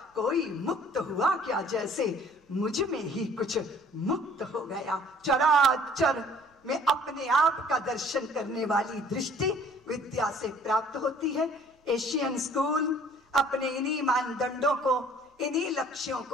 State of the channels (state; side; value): normal; both; correlation 0.54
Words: कोई मुक्त हुआ क्या जैसे मुझ में ही कुछ मुक्त हो गया। चराचर में अपने आप का दर्शन करने वाली दृष्टि विद्या से प्राप्त होती है। एशियन स्कूल अपने इन्हीं मानदंडों को, इन्हीं लक्ष्यों